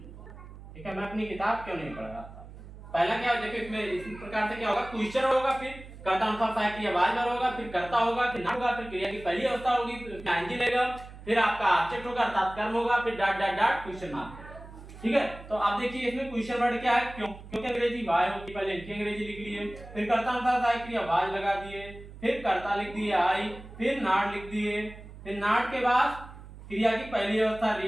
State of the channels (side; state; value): right; noise; hum, 16 dB below the sound